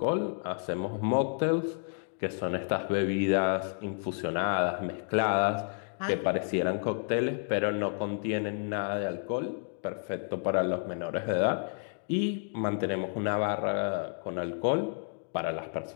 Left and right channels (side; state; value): right; silent; digital silence